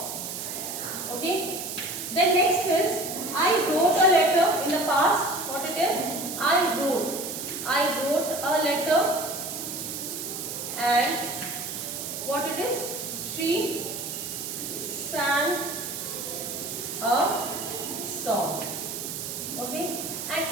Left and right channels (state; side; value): noise; right; hiss, 6 dB below the sound